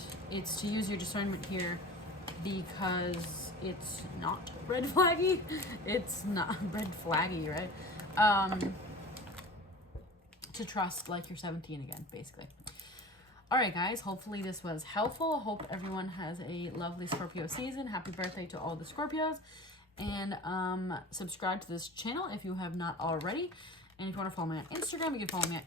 it's to use your discernment here because it's not red flaggy. It's not red flaggy, right? To trust like you're 17 again, basically. All right, guys, hopefully this was helpful. Hope everyone has a lovely Scorpio season. Happy birthday to all the Scorpios. And subscribe to this channel if you have not already. And if you want to follow me on Instagram, you can follow me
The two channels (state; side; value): normal; both; correlation 0.37